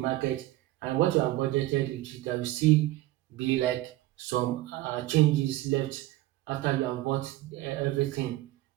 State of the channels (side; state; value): left; quieter; 16.8 dB